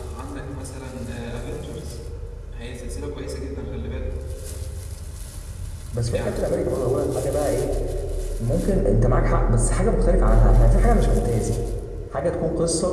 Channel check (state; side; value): identical; both; correlation 1.00